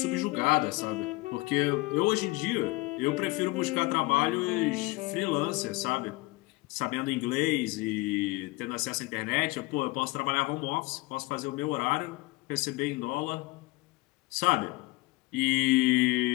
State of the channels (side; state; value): right; quieter; 22.9 dB